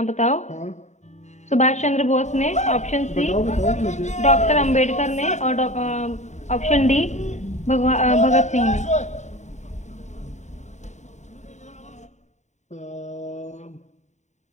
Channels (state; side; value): late; right; 0.34 ms